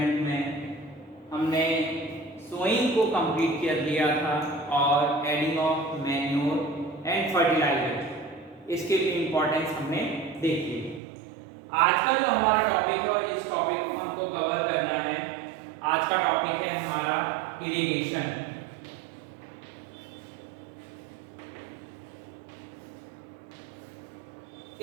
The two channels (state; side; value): drops out; left; at 11.0 s